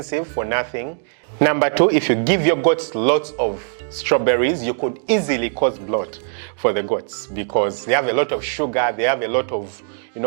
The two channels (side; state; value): left; silent; digital silence